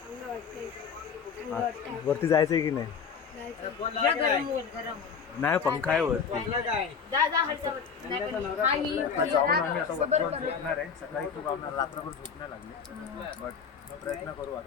वरती जायचंय की नाही? नाही पंखा आहे वरती. जाऊन आम्ही आता वरती झोपणार आहे. सकाळी खूप आम्हाला रात्रभर झोप नाही लागली बट प्रयत्न करू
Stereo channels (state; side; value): quieter; right; 6.3 dB